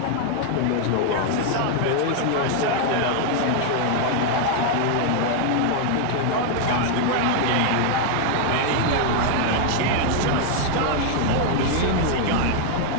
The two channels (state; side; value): different; both; correlation 0.00